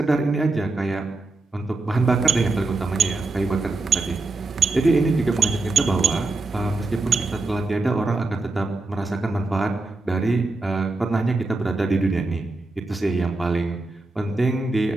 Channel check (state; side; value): quieter; left; 3.2 dB